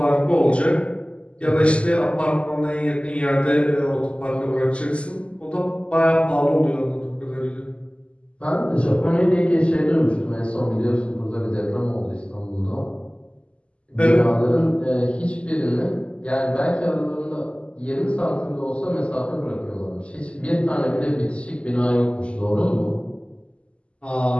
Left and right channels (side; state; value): right; late; 0.056 ms